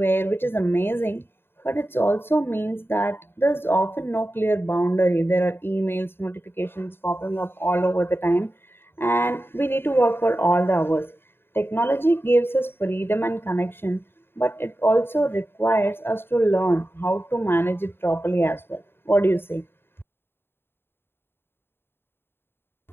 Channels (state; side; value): late; right; 0.11 ms